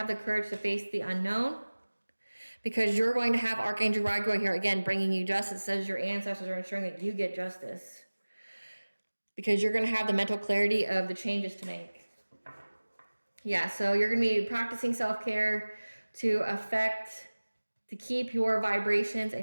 the courage to face the unknown. Because you're going to have Archangel Raguel here, again, bringing you justice. It says your ancestors are ensuring that you get justice. Because you're going to have the mental clarity of the changes to make. Yeah, so you're going to be practicing self-care to keep your vibrations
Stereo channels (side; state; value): both; inverted; correlation -1.00